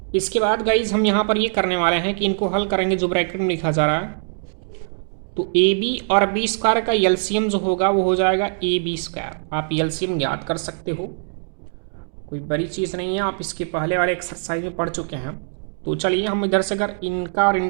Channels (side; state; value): left; silent; digital silence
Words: इसके बाद गाइज हम यहाँ पर ये करने वाले हैं कि इनको हल करेंगे, जो ब्रैकेट में लिखा जा रहा है, तो ab और b² का एलसीएम जो होगा वो हो जाएगा ab²। आप एलसीएम ज्ञात कर सकते हो, कोई बड़ी चीज़ नहीं है, आप इसके पहले वाले एक्सरसाइज में पढ़ चुके हैं। तो चलिए हम इधर से अगर इनका और